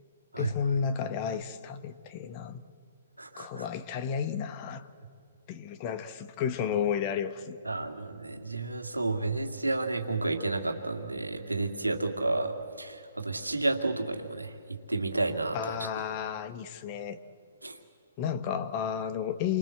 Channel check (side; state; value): both; inverted; correlation -0.61